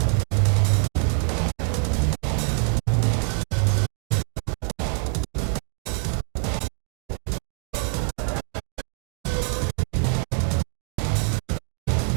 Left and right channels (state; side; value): quieter; left; 39.8 dB